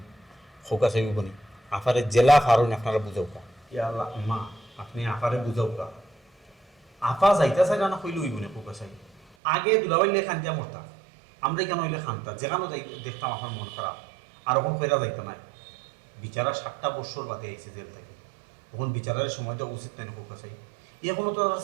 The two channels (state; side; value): drops out; left; at 9.2 s